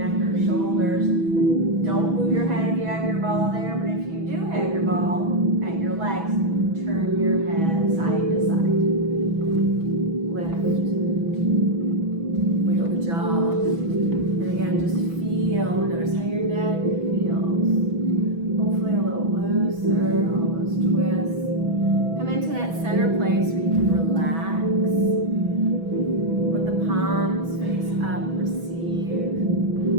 or shoulders. Don't move your head if you have your ball there, but if you do have your ball at your legs, turn your head side to side. Lift. Wiggle the jaw. And again, just feel, notice how your neck feels. Hopefully a little looser, all those twists. Come into that center place where you can relax. Let the palms face up, receive.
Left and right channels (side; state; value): left; late; 6.1 ms